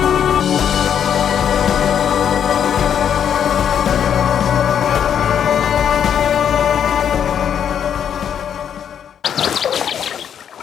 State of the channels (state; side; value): quieter; right; 8.6 dB